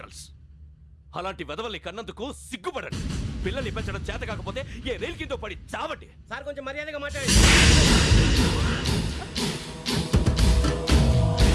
అలాంటి వెధవల్ని కన్నందుకు సిగ్గుపడండి. పిల్లల్ని పెంచడం చేత కాకపోతే ఏ రైలు కింద పడి చావండి. సార్ కొంచెం మర్యాదగా మాట్లాడండి.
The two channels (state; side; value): identical; both; correlation 1.00